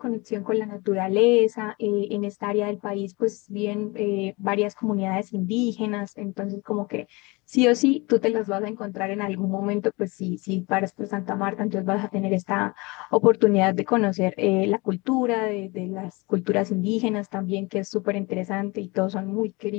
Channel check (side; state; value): right; quieter; 25.7 dB